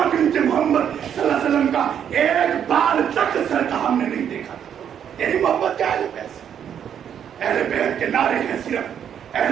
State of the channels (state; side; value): quieter; left; 8.8 dB